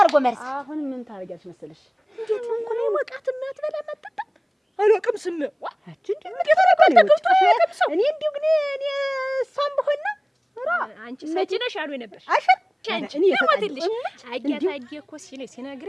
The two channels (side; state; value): both; identical; correlation 1.00